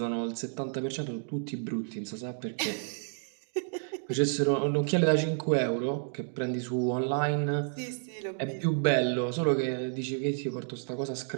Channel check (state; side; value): silent; left; digital silence